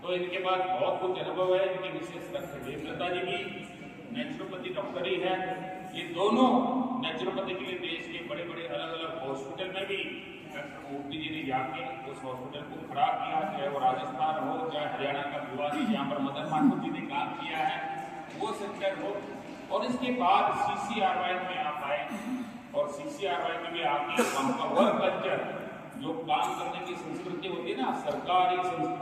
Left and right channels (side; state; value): both; identical; correlation 1.00